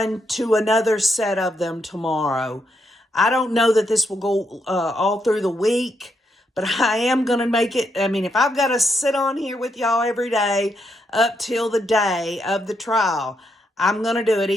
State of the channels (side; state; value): both; normal; correlation 0.79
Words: to another set of them tomorrow. I don't know that this will go all through the week, but I am going to make it. If I've got to sit on here with y'all every day up till the day of the trial, I'm going to do it